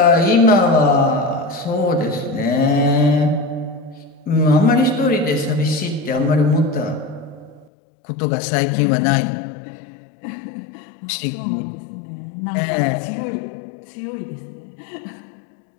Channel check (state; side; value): drops out; right; at 7.7 s